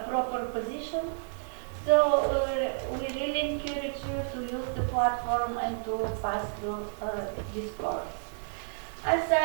proper position. So we really encourage you to use the platform and to pass through this course. As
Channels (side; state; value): left; silent; digital silence